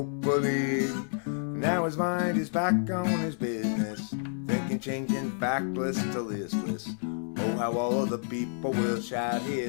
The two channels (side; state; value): right; silent; 58 dB below the other